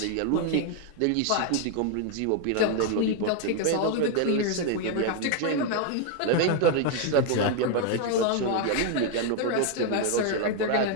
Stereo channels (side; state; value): both; different; correlation 0.00